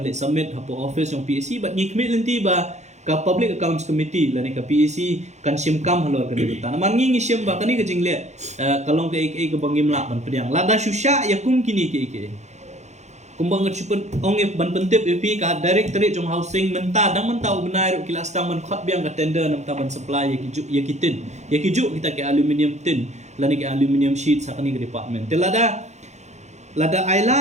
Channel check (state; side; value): late; left; 0.33 ms